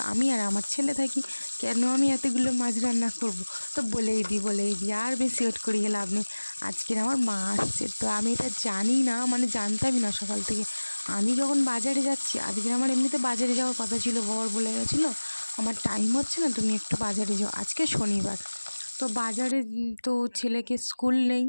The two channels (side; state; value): both; inverted; correlation -1.00